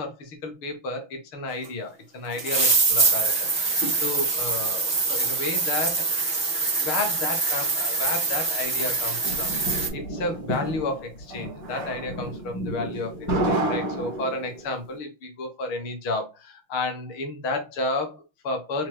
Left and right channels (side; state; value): right; late; 6.0 ms